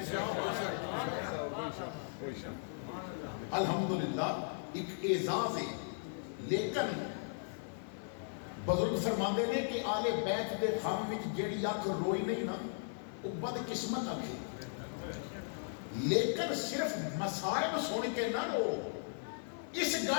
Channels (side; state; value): right; silent; 53 dB below the other